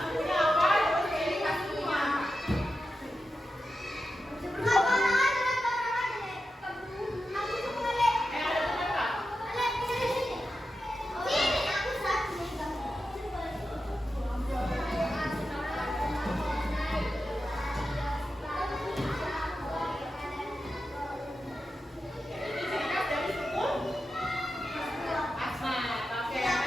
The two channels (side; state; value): both; normal; correlation 0.90